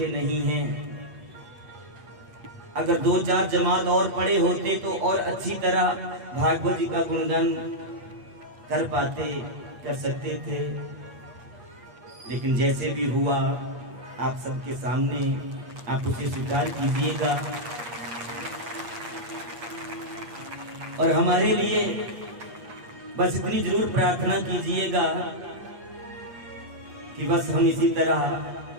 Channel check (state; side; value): late; left; 8.4 ms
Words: नहीं हैं। अगर 2-4 जमात और पढ़े होते तो और अच्छी तरह भागवत जी का गुणगान कर पाते, कर सकते थे, लेकिन जैसे भी हुआ आप सबके सामने आप उसे स्वीकार कीजिएगा और हमारे लिए बस इतनी जरूर प्रार्थना कीजिएगा कि बस हम इसी तरह